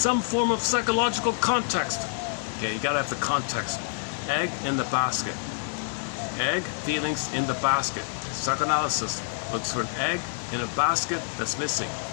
form of psychological context. Okay, you gotta have the context. Egg in the basket. Egg, feelings in the basket. Psychoanalysis looks for an egg in a basket that's missing.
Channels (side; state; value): right; silent; digital silence